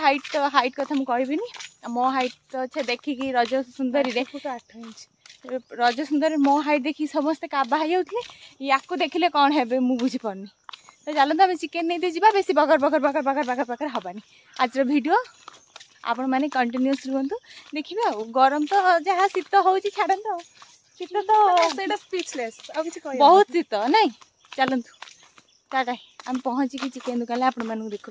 हाइट कथा मुझे कहबी मो हाइट तो अच्छे देखिकी रज सुंदरी 8 इंच रज सुंदर मो हाइट देखी समस्ते काबा होते या देखिले कौन है मुझे बुझीपारनी। तो चलते आम चिकेन नहीं जा बेस बकर बकर बकर बकर बकर बकर हबानी आज वीडियो आपण मैंने कंटिन्यूस रुहतु देखिए। गरम तो जहाँ शीत हो छाड़त शीत तो स्पीचलेस बहुत शीत नाई। चलतु टाटा हम पहुँचिकी चिकेन दुकान आपण मानू देखु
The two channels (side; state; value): both; identical; correlation 1.00